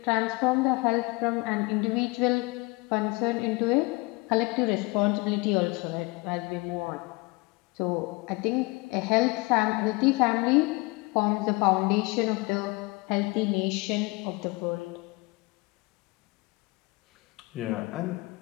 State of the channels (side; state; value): right; quieter; 24.7 dB